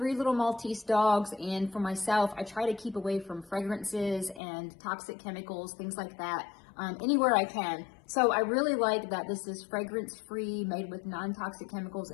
little Maltese dogs, and for myself, I try to keep away from fragrances and toxic chemicals, things like that, anywhere I can. So I really like that this is fragrance-free, made with non-toxic chemicals,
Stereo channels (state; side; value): drops out; right; at 4.4 s